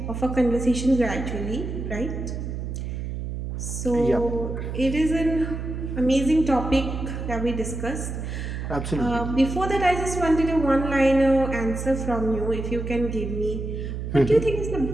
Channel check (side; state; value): right; noise; hum, 5 dB below the sound